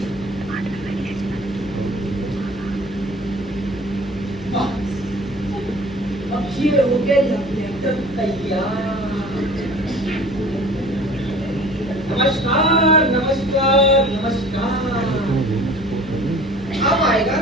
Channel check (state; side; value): noise; left; hum, 16 dB below the sound